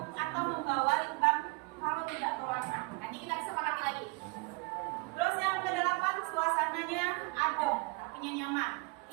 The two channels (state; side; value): quieter; left; 28.8 dB